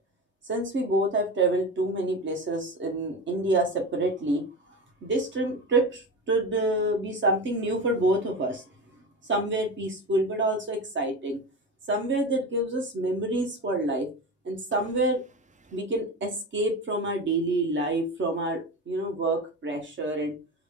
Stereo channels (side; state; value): both; normal; correlation 0.25